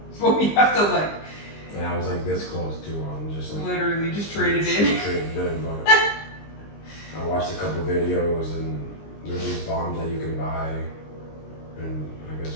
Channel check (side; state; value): right; late; 20 ms